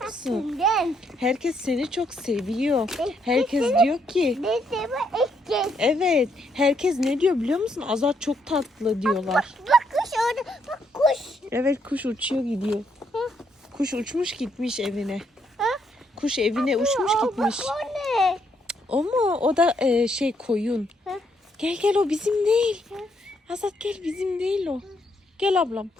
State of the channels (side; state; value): both; normal; correlation 0.74